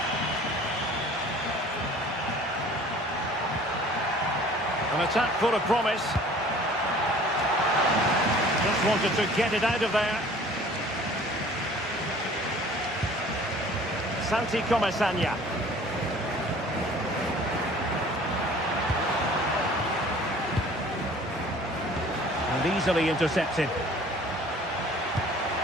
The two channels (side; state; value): both; normal; correlation 0.49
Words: An attack full of promise. Just wanted to get it out of there. Santi Comesaña. And easily intercepted.